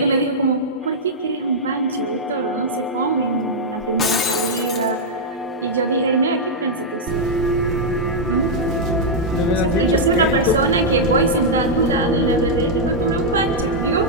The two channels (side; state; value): both; normal; correlation -0.06